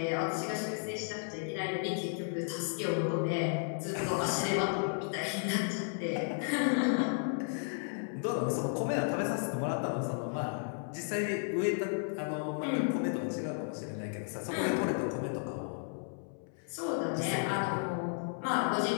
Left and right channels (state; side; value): silent; right; 55 dB below the other